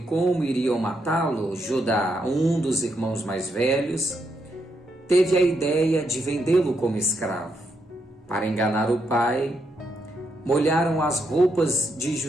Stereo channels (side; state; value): both; normal; correlation 0.79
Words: iriam matá-lo, Judá, um dos irmãos mais velhos, teve a ideia de vendê-lo como escravo. Para enganar o pai, molharam as roupas de